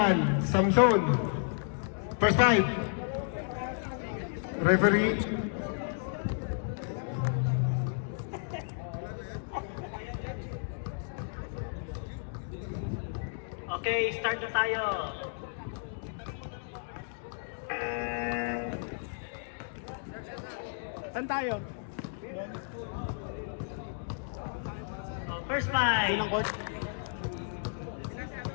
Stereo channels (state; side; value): silent; right; digital silence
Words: Samson. First 5. Referee. Okay, start na tayo. Saan tayo? First 5. Sinang court?